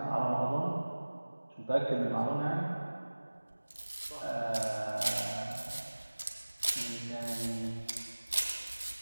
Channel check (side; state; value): both; inverted; correlation -1.00